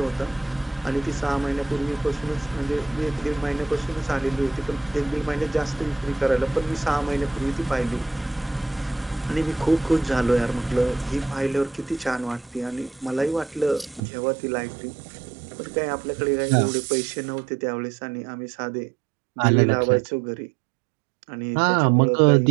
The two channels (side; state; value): left; drops out; at 14.0 s